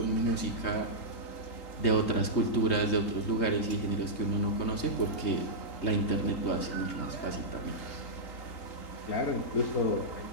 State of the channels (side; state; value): right; late; 3.8 ms